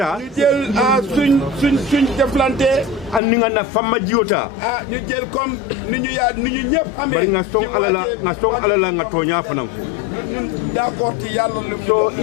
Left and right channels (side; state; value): right; drops out; at 3.2 s